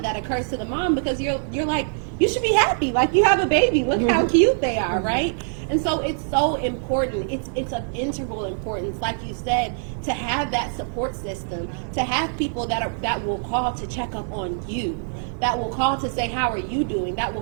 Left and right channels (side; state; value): left; silent; digital silence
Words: that occurs to the mom, because you're like, you should be happy. Like, you have a baby. Look how cute they are, right? And so it's so important. It's of integral importance, like you said, to have that support system, to have people that will call to check up on you, that will call to say, how are you doing? That